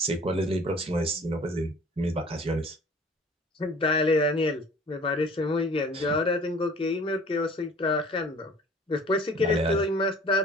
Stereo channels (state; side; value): normal; both; correlation 0.49